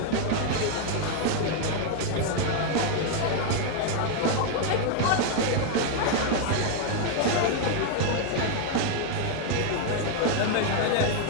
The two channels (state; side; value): different; both; correlation 0.01